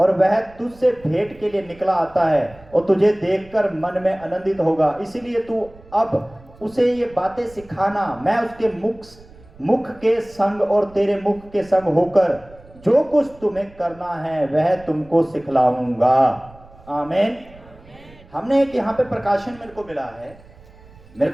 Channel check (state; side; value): noise; right; rumble, 24 dB below the sound